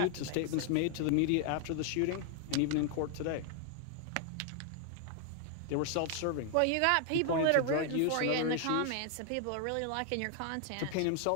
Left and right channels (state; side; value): different; both; correlation 0.00